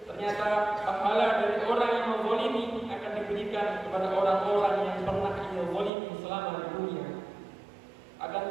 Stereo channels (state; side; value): drops out; left; at 5.9 s